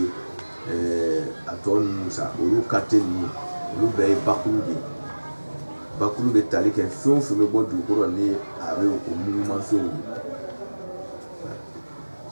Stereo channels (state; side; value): inverted; both; correlation -1.00